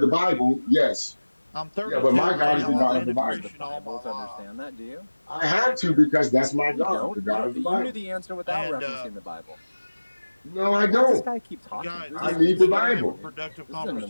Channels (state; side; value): inverted; both; correlation -1.00